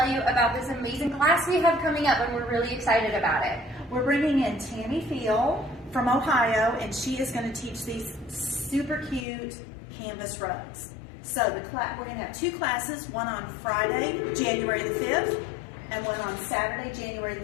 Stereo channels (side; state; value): right; drops out; at 9.2 s